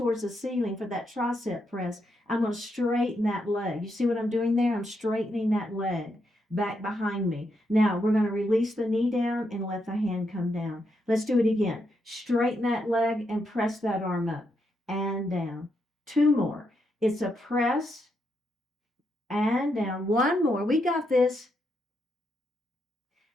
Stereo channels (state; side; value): normal; both; correlation 0.80